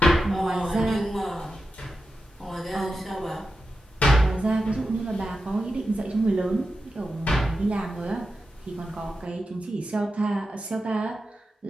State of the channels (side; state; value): both; normal; correlation 0.90